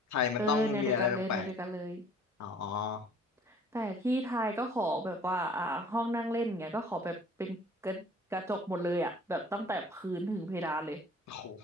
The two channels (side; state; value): both; normal; correlation 0.51